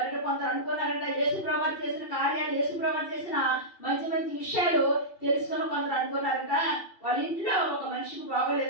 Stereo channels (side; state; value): right; late; 2.7 ms